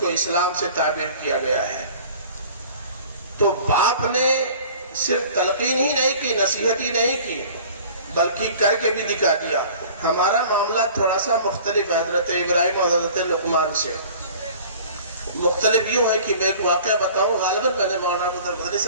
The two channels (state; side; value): inverted; both; correlation -0.46